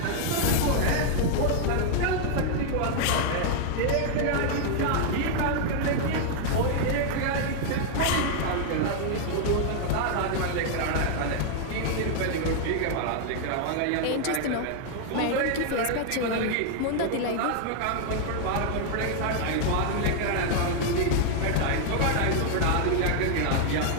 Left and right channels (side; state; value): both; different; correlation 0.00